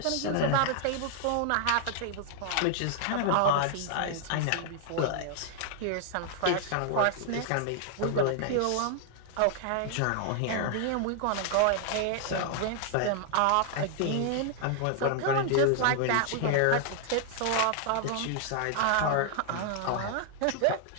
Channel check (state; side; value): different; both; correlation 0.00